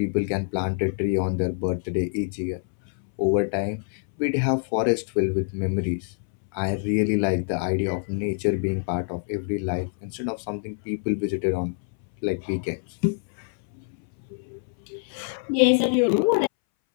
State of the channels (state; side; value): silent; right; 61 dB below the other